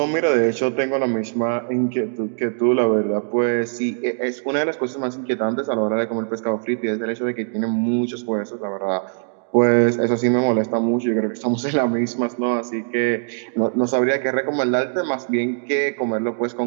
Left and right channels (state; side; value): silent; left; digital silence